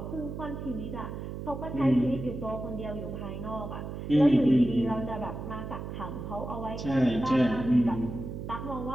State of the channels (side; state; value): right; noise; hum, 7 dB below the sound